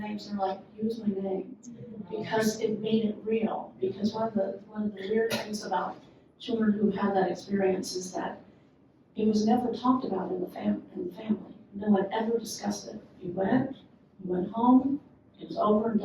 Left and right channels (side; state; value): both; identical; correlation 1.00